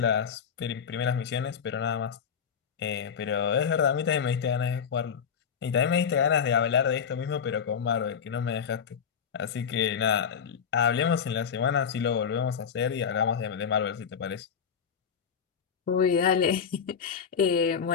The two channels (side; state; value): right; quieter; 7.1 dB